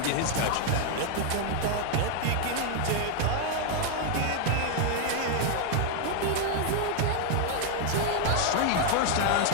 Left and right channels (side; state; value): both; different; correlation 0.00